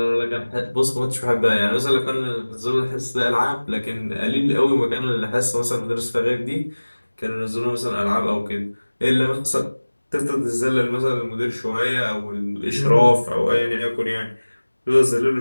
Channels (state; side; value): inverted; both; correlation -1.00